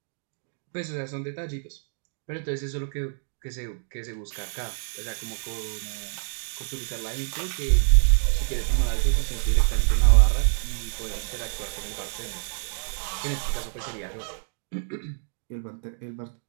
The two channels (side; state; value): left; silent; digital silence